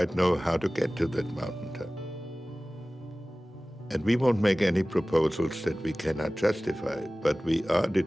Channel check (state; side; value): normal; both; correlation 0.98